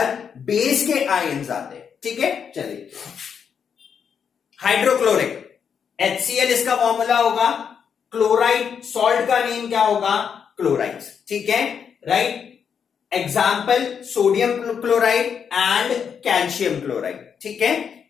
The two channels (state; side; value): quieter; right; 7.2 dB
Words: बेस के आयन्स आते हैं, ठीक है। चलिए, हाइड्रोक्लोरिक HCl इसका फॉर्मूला होगा, क्लोराइड सॉल्ट का नेम क्या होगा, क्लोराइड्स, ठीक है, right. Example sodium chloride and calcium chloride, ठीक है,